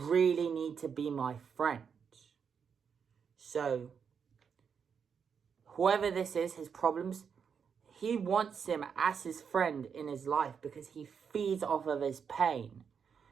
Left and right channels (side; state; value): left; quieter; 6.7 dB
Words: need to be my friend. So, whoever this is, his problems, he wants him as his friend in his life because he feeds off of his pain.